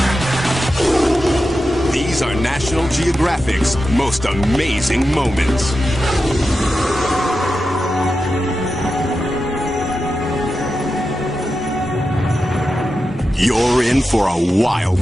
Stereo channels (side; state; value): both; normal; correlation 0.90